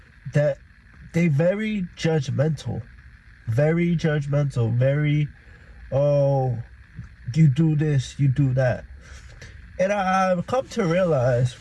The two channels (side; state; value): both; identical; correlation 1.00